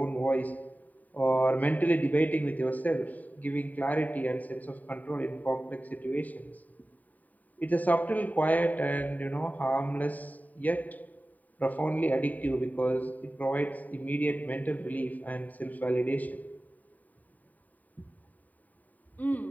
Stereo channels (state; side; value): late; right; 0.078 ms